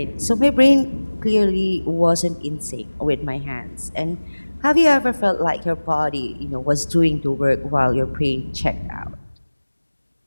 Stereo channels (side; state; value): both; inverted; correlation -1.00